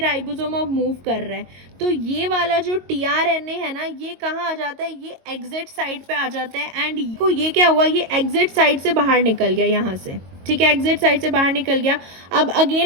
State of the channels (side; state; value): left; late; 22 ms